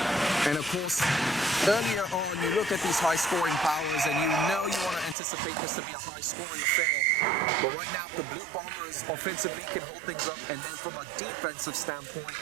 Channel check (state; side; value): drops out; left; at 5.2 s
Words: And of course, earlier on, you look at these high-scoring powers, and you know you want to anticipate this to be a high-scoring affair. But right now, if the Blue Bombers offensively can hold things up, and then from a defensive standpoint,